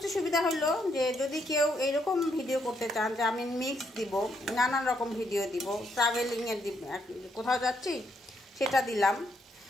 সুবিধা হলো যে যদি কেউ এইরকম ভিডিও করতে চান যে আমি মিক্স দিব, নানান রকম ভিডিও দিব, ট্রাভেলিংয়ের কোথাও যাচ্ছি সেটা দিলাম।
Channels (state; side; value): normal; both; correlation 0.75